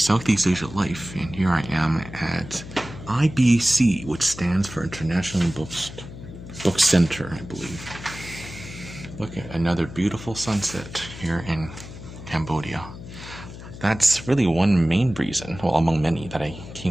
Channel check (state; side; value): noise; left; hum, 13 dB below the sound